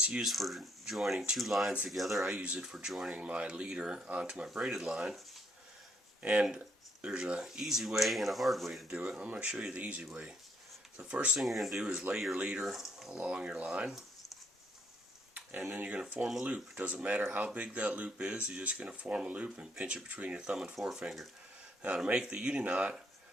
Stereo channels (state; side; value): normal; both; correlation 0.71